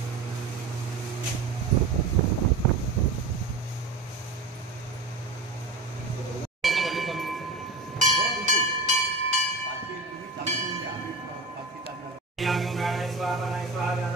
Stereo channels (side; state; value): left; quieter; 3.5 dB